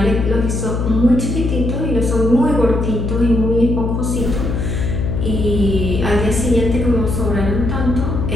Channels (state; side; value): noise; left; hum, 1 dB below the sound